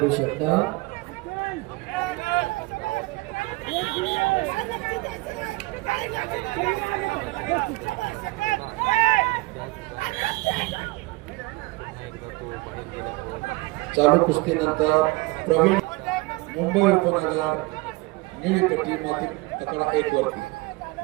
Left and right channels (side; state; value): left; quieter; 23.0 dB